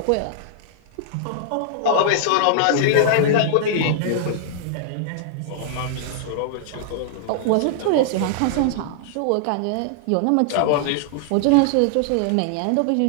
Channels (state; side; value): different; both; correlation -0.01